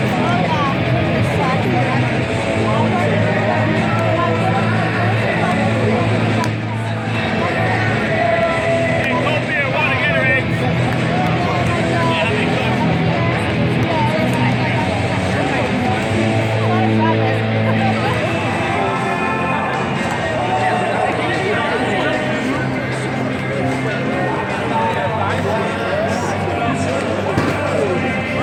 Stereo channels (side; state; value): both; identical; correlation 1.00